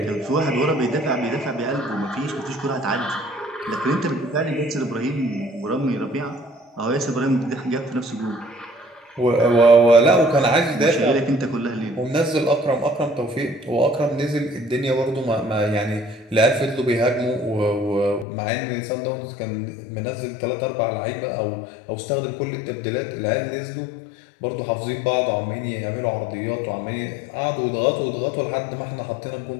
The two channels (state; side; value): drops out; right; at 18.2 s